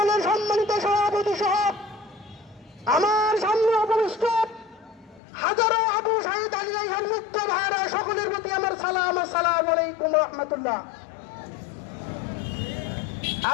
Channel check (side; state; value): right; drops out; at 5.2 s